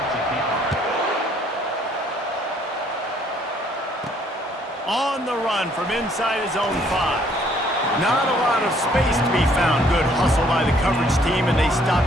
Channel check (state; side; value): normal; both; correlation 0.63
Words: On the run from inside his own 5. Not a lot of space to be found. Good hustle by the coverage team, and they stop